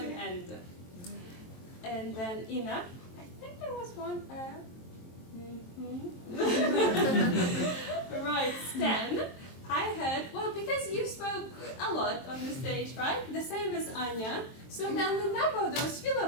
and then Ina, I think there was 1 Right, Stan, I heard, well, because you spoke a lot on the stage, right? The same as Anya. So then the number of those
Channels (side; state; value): right; late; 23 ms